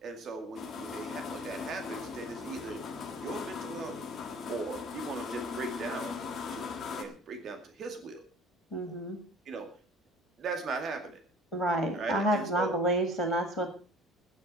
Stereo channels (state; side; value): normal; both; correlation 0.47